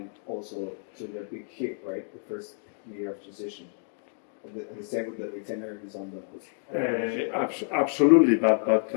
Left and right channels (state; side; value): silent; right; 59 dB below the other